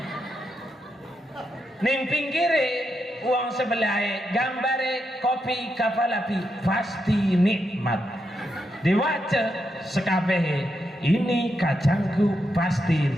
Ning pinggire uang sebelah gambare kopi kapal api, pasti nikmat. Diwaca sekabehe, ini kacangku pasti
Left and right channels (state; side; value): normal; both; correlation 0.84